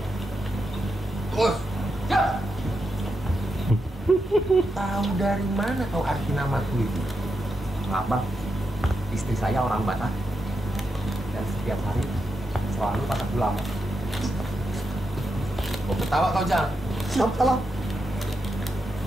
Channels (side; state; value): both; normal; correlation 0.85